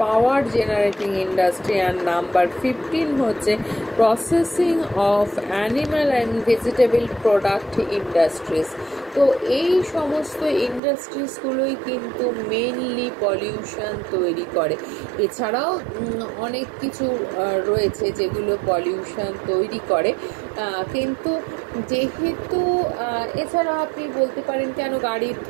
পাওয়ার generating industry, and number 15 হচ্ছে processing of animal and vegetable product industries. তো এই সমস্ত ইন্ডাস্ট্রিজগুলোই কিন্তু মেনলি পলিউশন তৈরি করে। এছাড়াও অনেক কিছু রয়েছে যেগুলো পলিউশন তৈরি করে, কিন্তু যেহেতু এছাড়া আপনি বলতে পারেন কেন গাড়ির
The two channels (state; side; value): drops out; left; at 10.8 s